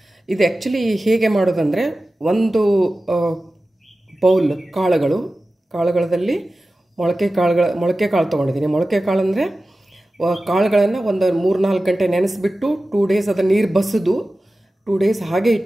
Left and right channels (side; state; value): both; normal; correlation 0.95